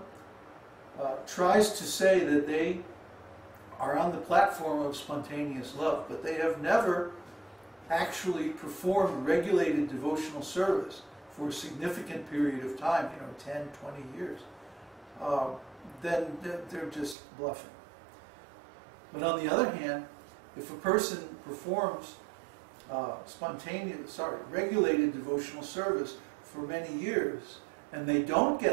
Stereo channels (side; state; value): left; drops out; at 17.2 s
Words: tries to say that they are on the platform of spontaneous love, but they have never actually performed regulated devotional service for a significant period of time, 10, 20 years, then they're just bluffing. But on the other hand, if a person performs regulated devotional service for many years, and they don't